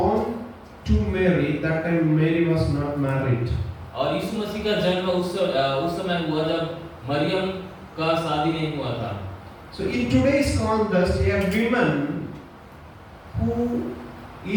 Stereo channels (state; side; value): identical; both; correlation 1.00